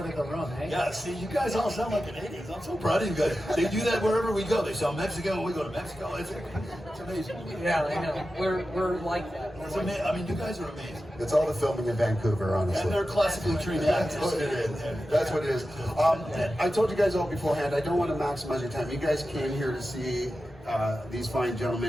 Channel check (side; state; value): both; normal; correlation 0.92